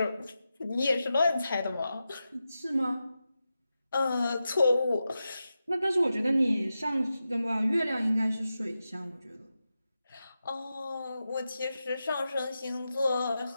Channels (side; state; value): both; inverted; correlation -0.91